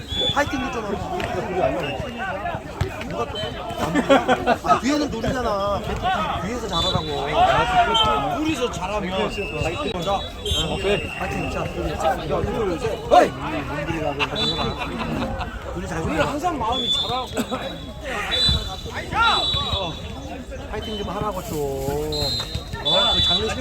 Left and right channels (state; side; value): identical; both; correlation 1.00